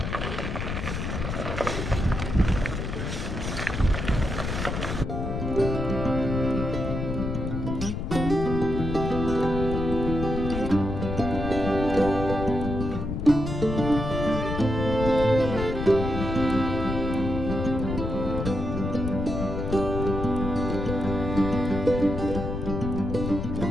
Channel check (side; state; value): left; noise; rumble, 3 dB below the sound